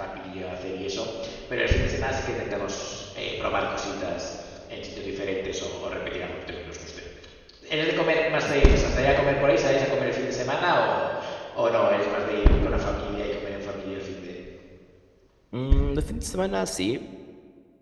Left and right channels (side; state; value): both; identical; correlation 1.00